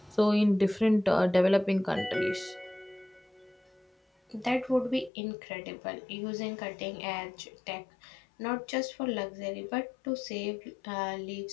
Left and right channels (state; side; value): drops out; right; at 5.1 s